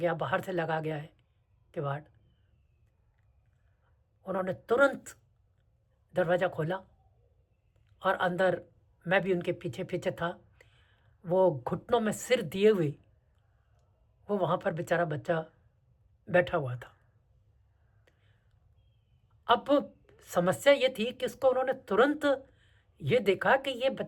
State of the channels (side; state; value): both; identical; correlation 1.00